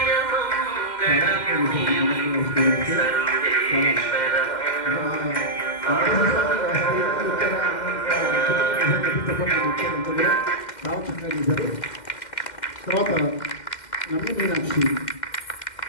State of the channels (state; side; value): late; right; 2.1 ms